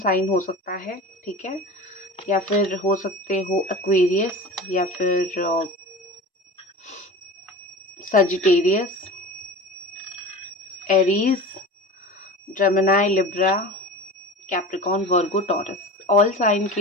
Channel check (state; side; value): normal; both; correlation 0.34